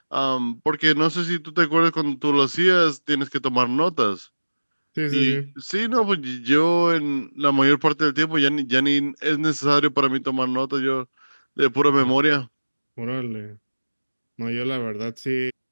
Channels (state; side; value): inverted; both; correlation -1.00